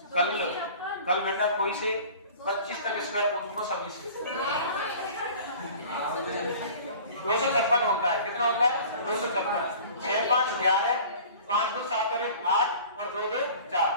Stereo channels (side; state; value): both; inverted; correlation -0.44